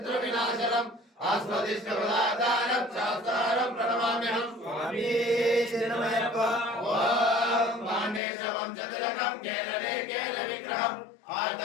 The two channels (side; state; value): right; drops out; at 8.2 s